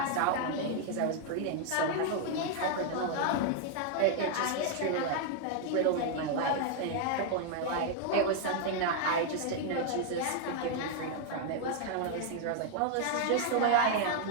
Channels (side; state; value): both; different; correlation 0.00